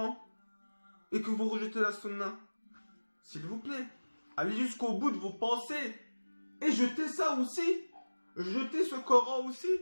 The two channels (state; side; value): inverted; both; correlation -1.00